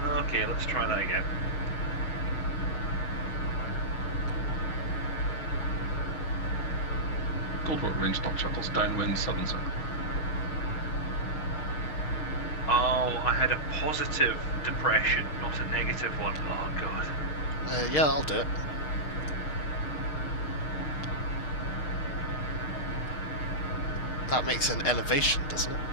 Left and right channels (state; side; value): late; right; 6.5 ms